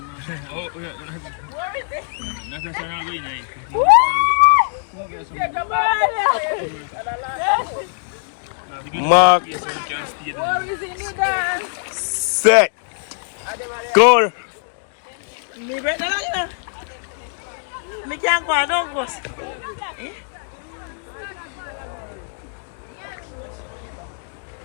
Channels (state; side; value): silent; right; digital silence